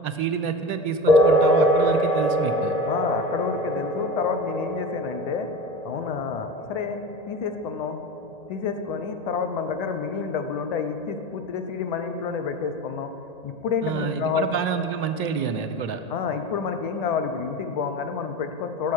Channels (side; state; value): right; late; 1.8 ms